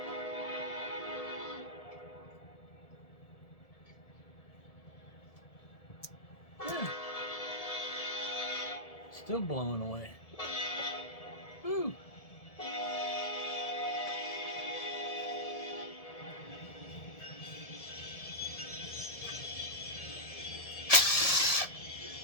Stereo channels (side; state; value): right; late; 1.7 ms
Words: Yeah. Still blowing away. Woo.